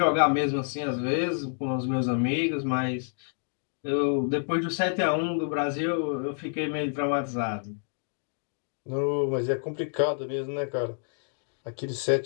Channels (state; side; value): silent; right; digital silence